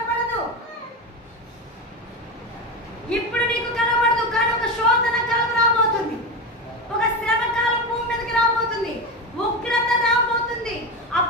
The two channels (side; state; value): both; normal; correlation 0.18